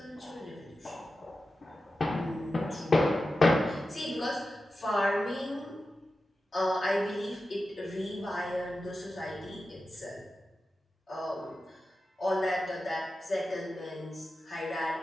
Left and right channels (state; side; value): normal; both; correlation 0.92